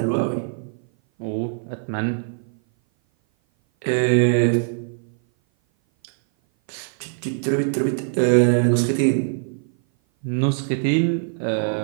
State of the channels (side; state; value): left; silent; 57 dB below the other